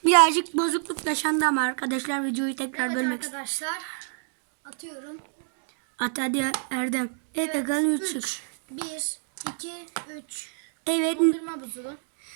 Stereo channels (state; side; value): silent; left; digital silence